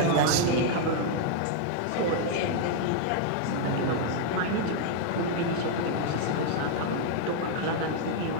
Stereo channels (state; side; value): different; both; correlation 0.00